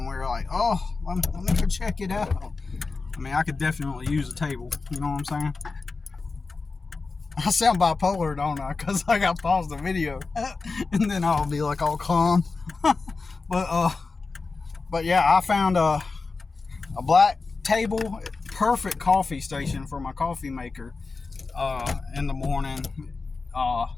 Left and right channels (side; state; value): right; quieter; 4.1 dB